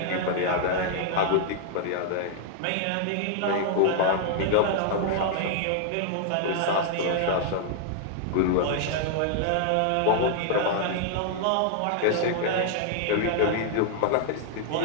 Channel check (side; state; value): both; different; correlation 0.00